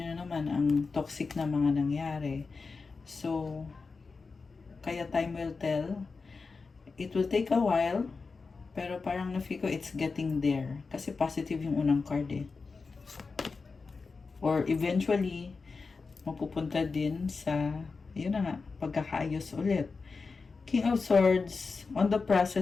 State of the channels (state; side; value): quieter; right; 4.4 dB